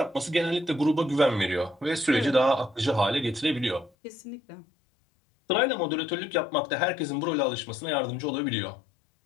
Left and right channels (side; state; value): right; drops out; at 3.9 s